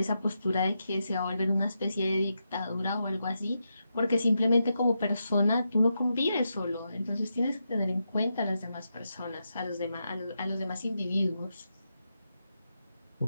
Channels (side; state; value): both; inverted; correlation -0.86